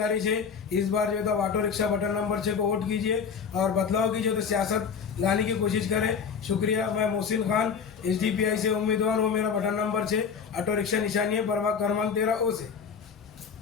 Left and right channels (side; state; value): right; quieter; 6.3 dB